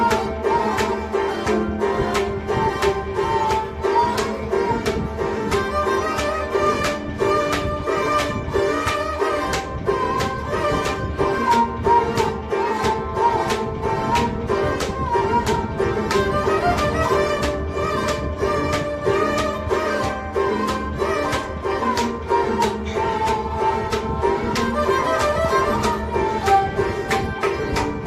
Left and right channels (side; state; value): both; identical; correlation 1.00